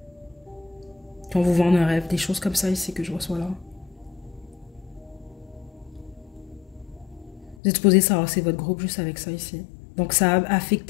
Qu'on vous vende un rêve, des choses comme ça ici que je reçois là. Vous êtes supposé savoir que c'est votre groupe juste avec ça ici. Donc ça a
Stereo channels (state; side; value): drops out; right; at 7.6 s